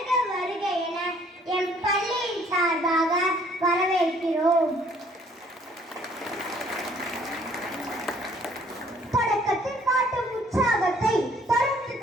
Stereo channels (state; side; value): normal; both; correlation 0.60